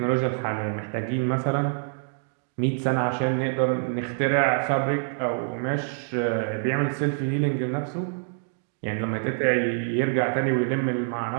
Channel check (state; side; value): silent; left; 61 dB below the other